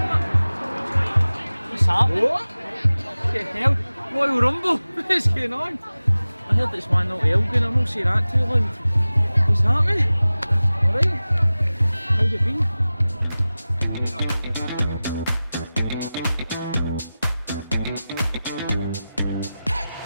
What's happening? What? Fucking hell, Royal Rumble, what's going on? I heard it's 1-0 to Elgin, I'm not saying that too loud. What's happening? Alright, how's it been?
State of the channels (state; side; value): inverted; both; correlation -0.96